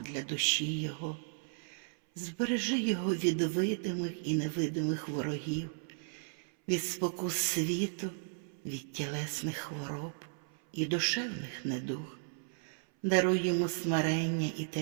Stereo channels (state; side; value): silent; left; 55 dB below the other